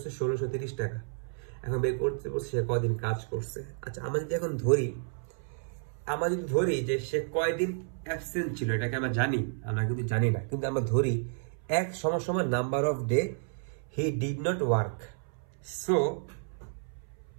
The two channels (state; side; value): silent; left; 57 dB below the other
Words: 1630 টাকা। এখন বের করতে বলছে সে কদিন কাজ করছে। আচ্ছা, আমরা যদি এখন ধরি যে সে কয়দিন অ্যাবসেন্ট ছিল, এটাকে আমরা জানি, আমরা কিন্তু জানি না, কিন্তু আমরা ধরি এক সমান number off day he did not work. So